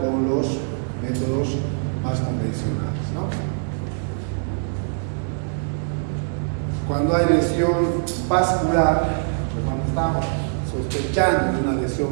los métodos más convencionales, ¿no? Cuando hay lesión vascular, cuando estamos sospechando de una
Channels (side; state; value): left; silent; digital silence